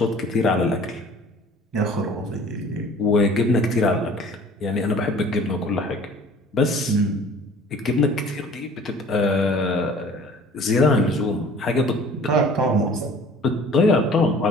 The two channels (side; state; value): both; normal; correlation 0.49